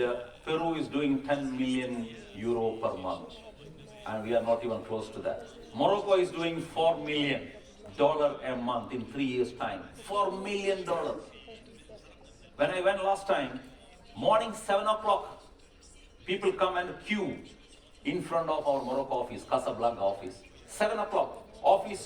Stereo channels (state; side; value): identical; both; correlation 1.00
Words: Peru is doing 10 million euro per month. And we are not even close to that. Morocco is doing $4 million a month in 3 years' time. $4 million. When I went last time, morning 7 o'clock, people come and queue in front of our Morocco office, Casablanca office. 7 o'clock,